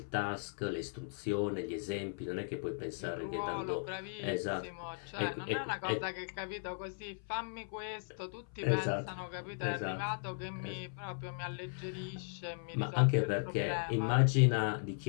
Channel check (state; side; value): silent; right; 53 dB below the other